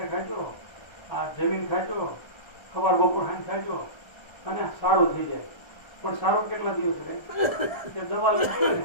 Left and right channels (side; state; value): right; late; 1.3 ms